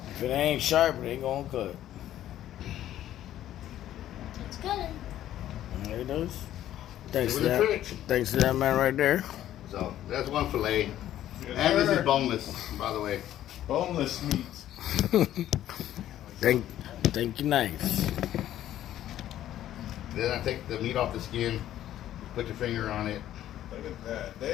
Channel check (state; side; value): quieter; right; 12.4 dB